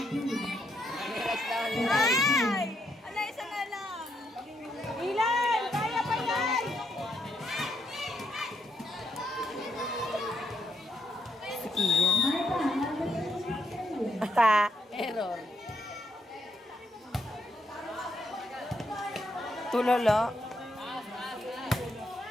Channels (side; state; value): both; normal; correlation 0.77